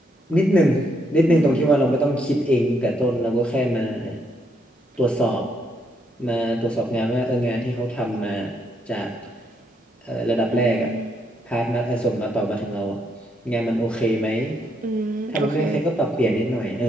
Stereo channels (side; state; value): both; normal; correlation 0.75